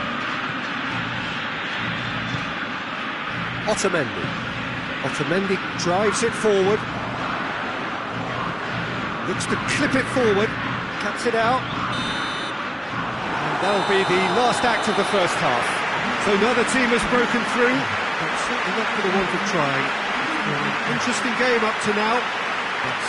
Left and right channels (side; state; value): both; identical; correlation 1.00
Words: Otamendi drives it forward. Looks to clip it forward. Cuts it out. And that'll be the last act of the first half. So neither team has broken through, but certainly not for the want of trying. An interesting game up to now, but